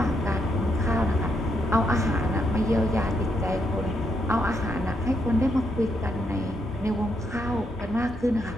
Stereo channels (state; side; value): normal; both; correlation 0.78